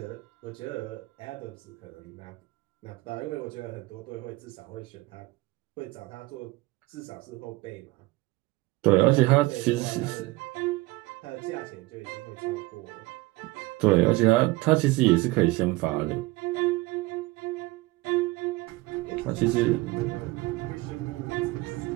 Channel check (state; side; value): quieter; left; 21.1 dB